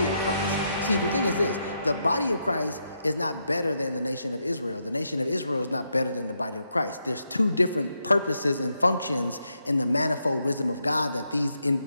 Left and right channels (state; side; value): inverted; both; correlation -0.81